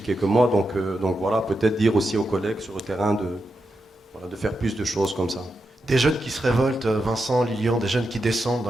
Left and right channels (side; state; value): both; normal; correlation 0.87